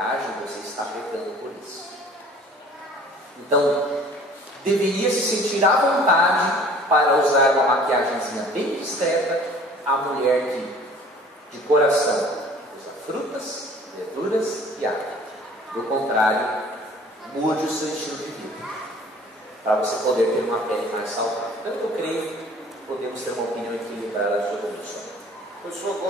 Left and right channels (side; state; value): both; normal; correlation 0.50